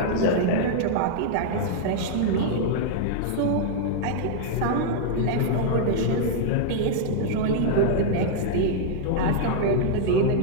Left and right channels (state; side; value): different; both; correlation -0.01